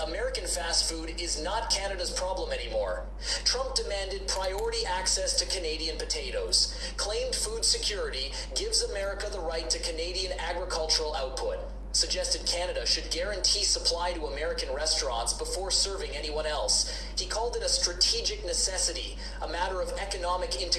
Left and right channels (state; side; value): identical; both; correlation 1.00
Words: American fast food is not Canada's problem anymore. Trump demanded priority access to Canadian potatoes, claimed food security gives America the right to Canadian agricultural output, suggested Canada should guarantee supply to American restaurants before serving anyone else. He called it a strategic necessity, a matter of economic